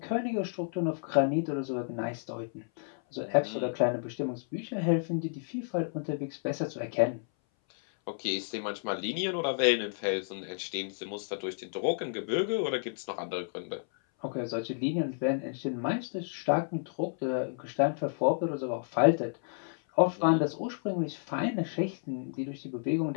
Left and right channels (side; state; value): right; silent; 57 dB below the other